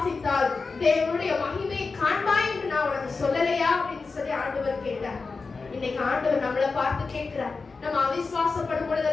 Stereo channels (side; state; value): right; quieter; 4.3 dB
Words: தேவனுடைய மகிமையை காண்பாய் என்று நான் உனக்கு சொல்லலையா அப்படின்னு சொல்லி ஆண்டவர் கேட்டார். இன்னைக்கு ஆண்டவர் நம்மளை பார்த்து கேட்கிறார். நம்ம அவிசுவாசப்படும்